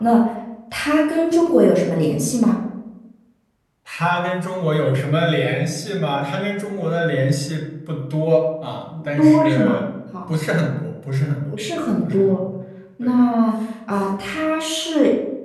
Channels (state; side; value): identical; both; correlation 1.00